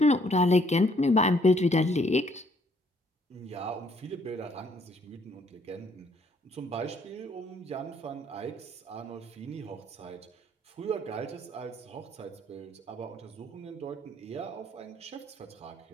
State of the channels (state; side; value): normal; both; correlation 0.65